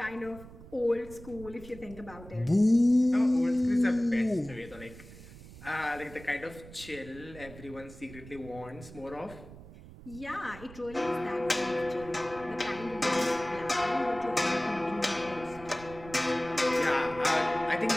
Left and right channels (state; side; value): noise; right; rumble, 17 dB below the sound